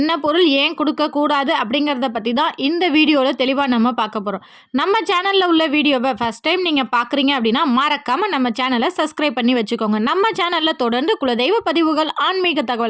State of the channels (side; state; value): both; identical; correlation 1.00